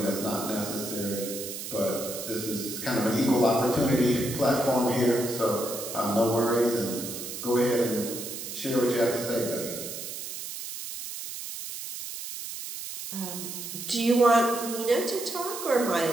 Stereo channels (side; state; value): right; noise; hiss, 8 dB below the sound